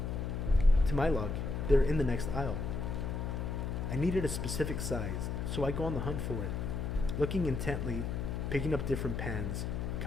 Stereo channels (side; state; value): left; noise; hum, 2 dB below the sound